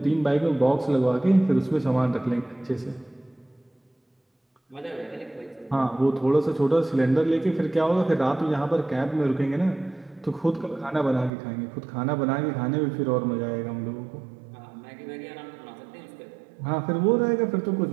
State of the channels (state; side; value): drops out; left; at 11.3 s